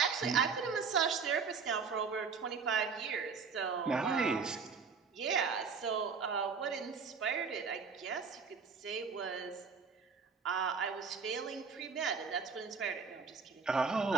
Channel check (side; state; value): left; quieter; 5.4 dB